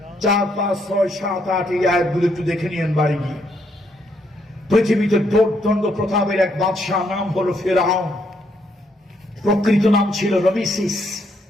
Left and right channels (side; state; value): both; normal; correlation 0.74